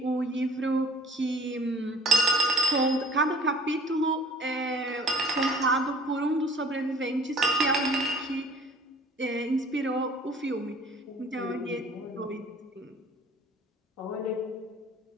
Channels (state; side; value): normal; both; correlation 0.52